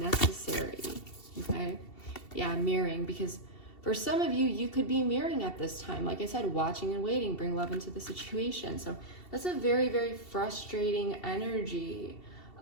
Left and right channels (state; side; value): late; right; 2.7 ms